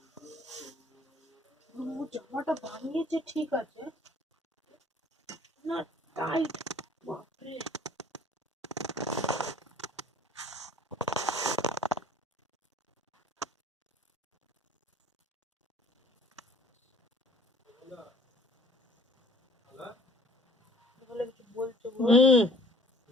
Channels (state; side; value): normal; both; correlation 0.52